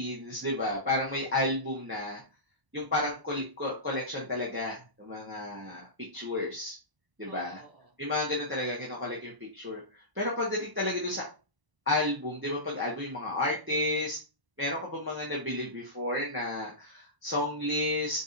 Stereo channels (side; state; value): left; late; 1.0 ms